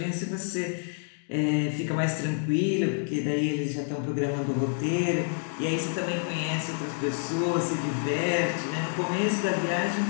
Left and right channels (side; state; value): right; silent; 59 dB below the other